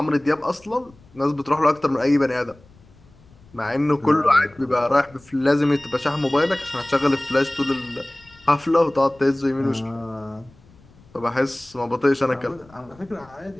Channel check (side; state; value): left; noise; rumble, 27 dB below the sound